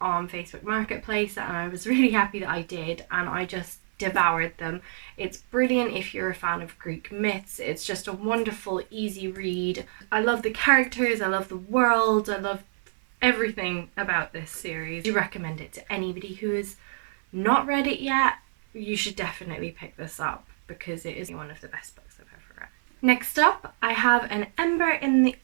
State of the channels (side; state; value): left; silent; 57 dB below the other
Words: on Facebook Marketplace, and I was really happy that I did, and I just devoured them. It's brilliant if you're a fan of Greek myths. It's just a wonderful, easy read. I love the characters, I love the world, I love everything about this series. I do recommend it to anybody who has not read it yet. You should definitely pick this up because it is one of the best books I've ever read. Next up, I have An Ember in the